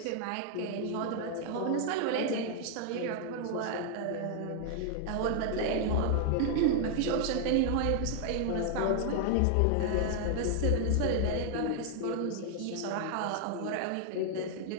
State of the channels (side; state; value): both; different; correlation 0.00